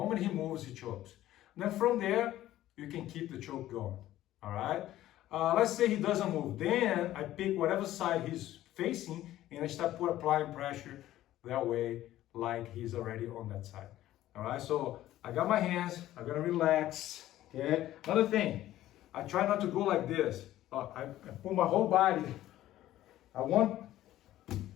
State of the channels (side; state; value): right; quieter; 14.1 dB